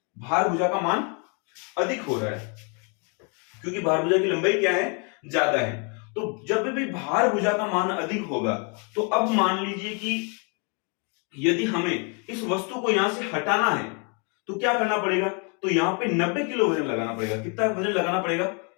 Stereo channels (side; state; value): right; quieter; 35.8 dB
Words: भार भुजा का मान अधिक हो रहा है, क्योंकि भार भुजा की लंबाई क्या है, ज्यादा है। तो जब भी भार भुजा का मान अधिक होगा, तो अब मान लीजिए कि यदि हमें इस वस्तु को यहां से हटाना है तो क्या करना पड़ेगा, तो यहां पे 90 किलो वजन लगाना पड़ेगा। कितना वजन लगाना पड़ेगा,